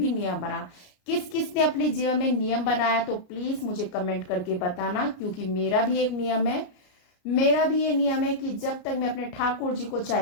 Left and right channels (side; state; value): right; late; 34 ms